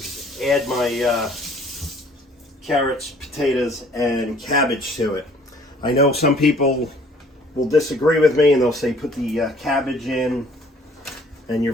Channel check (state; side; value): normal; both; correlation 0.57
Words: add my carrots, potatoes, and cabbage to it. I know some people will disagree with me and they'll say put the cabbage in and your